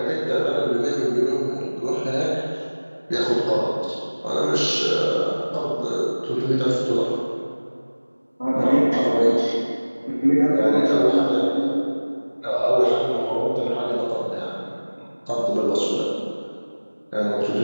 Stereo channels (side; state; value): both; inverted; correlation -1.00